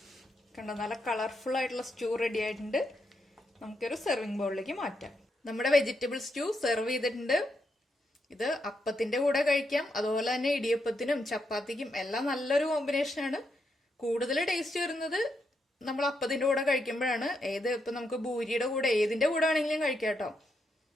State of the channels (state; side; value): normal; both; correlation 0.81